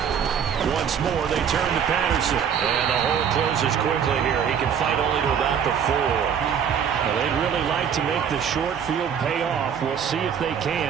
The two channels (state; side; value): quieter; left; 7.8 dB